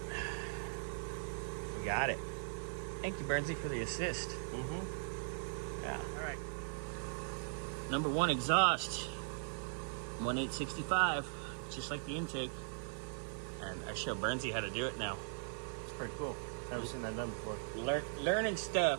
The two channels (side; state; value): left; silent; 51 dB below the other